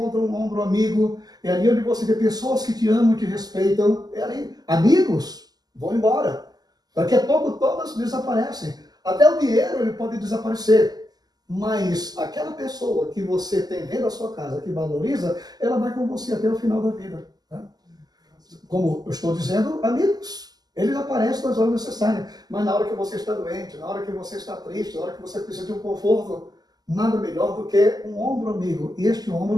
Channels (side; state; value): left; late; 0.19 ms